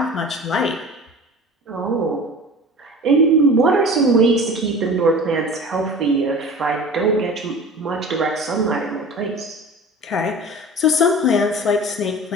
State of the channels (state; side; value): normal; both; correlation 0.38